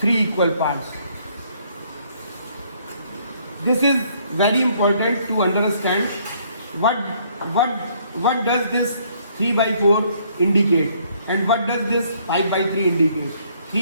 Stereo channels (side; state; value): both; inverted; correlation -0.65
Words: equal parts. This is very important to understand what does this 3 by 4 indicate and what does this 5 by 3 indicate.